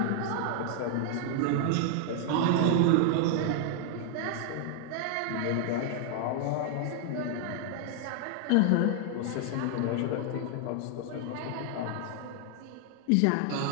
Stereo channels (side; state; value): both; different; correlation 0.00